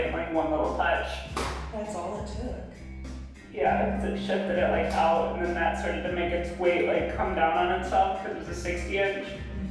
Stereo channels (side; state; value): both; identical; correlation 1.00